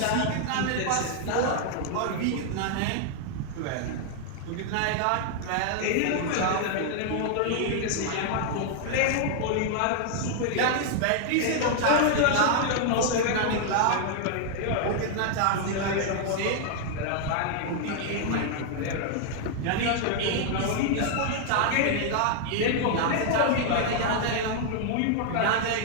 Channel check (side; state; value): both; different; correlation 0.00